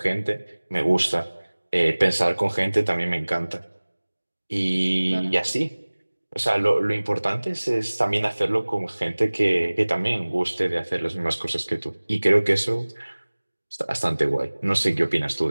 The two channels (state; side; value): inverted; both; correlation -1.00